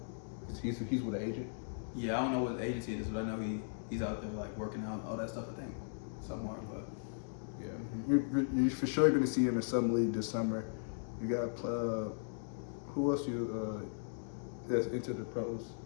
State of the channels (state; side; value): silent; right; digital silence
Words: He's with an agent? Yeah, I don't know what agency it is, but I know he's out there like working out all that stuff. I think somewhere, but yeah, you're for sure going to see him in some league this summer. You got who else that's into the pros